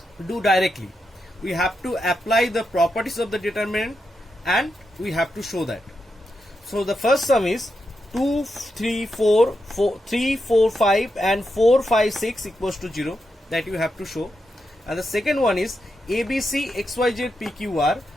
do directly. We have to apply the properties of the determinant and we have to show that. So the first sum is 2 3 4 3 4 5 and 4 5 6 equals to 0, that you have to show. And the second one is ABC XYZ PQR,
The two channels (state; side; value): normal; both; correlation 0.86